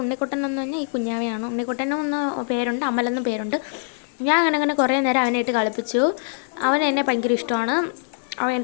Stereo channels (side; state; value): right; silent; digital silence